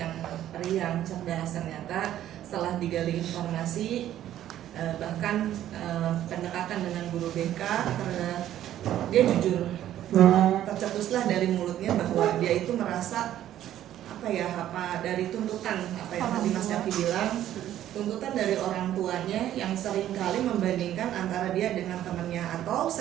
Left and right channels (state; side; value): quieter; left; 12.1 dB